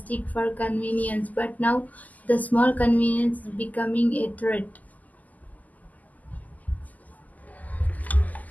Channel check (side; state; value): right; late; 0.079 ms